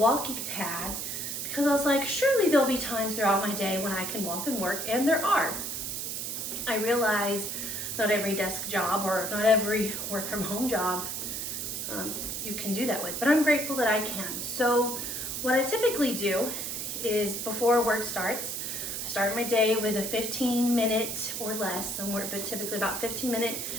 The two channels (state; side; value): noise; right; hiss, 4 dB below the sound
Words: pad because I was like, surely there'll be times throughout my day when I can walk and work, and there are. I realized not every desk job or not every work from home job you can do that with, but I'm grateful that I can. So what I typically do is before work starts, I start my day with a 15-minute or less, somewhere, but typically about 15-minute